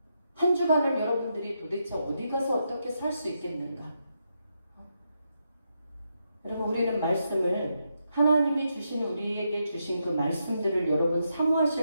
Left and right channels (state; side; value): inverted; both; correlation -0.82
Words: 한 주간을 여러분들이 도대체 어디 가서 어떻게 살 수 있겠는가? 여러분, 우리는 말씀을 하나님이 주신 우리에게 주신 그 말씀들을 여러분